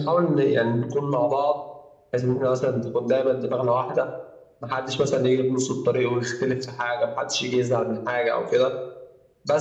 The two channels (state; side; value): identical; both; correlation 1.00